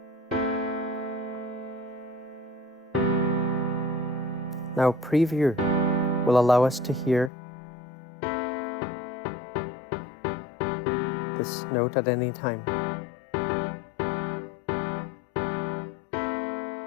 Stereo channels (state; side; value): drops out; right; at 7.3 s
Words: Now preview will allow us to hear this note at any time.